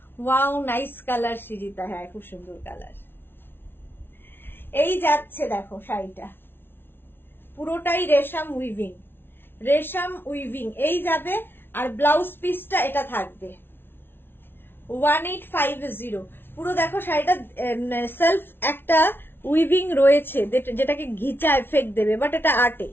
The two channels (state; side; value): late; right; 0.11 ms